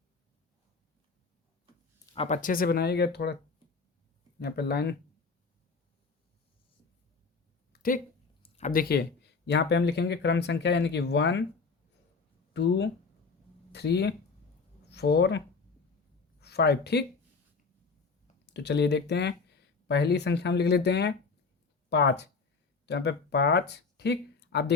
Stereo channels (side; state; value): right; quieter; 4.5 dB